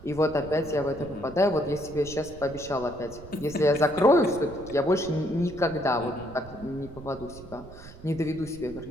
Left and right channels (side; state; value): right; noise; rumble, 16 dB below the sound